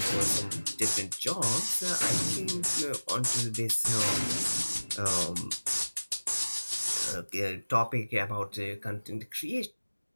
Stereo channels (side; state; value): both; inverted; correlation -1.00